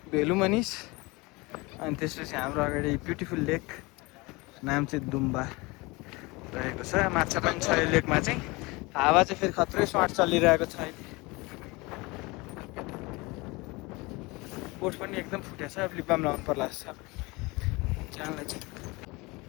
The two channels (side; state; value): right; quieter; 24.5 dB